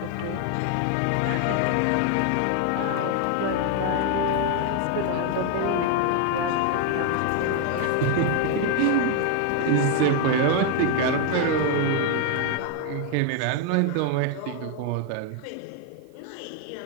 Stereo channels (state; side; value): different; both; correlation 0.00